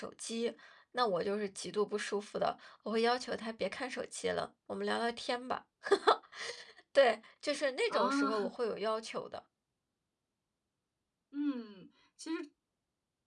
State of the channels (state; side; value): identical; both; correlation 1.00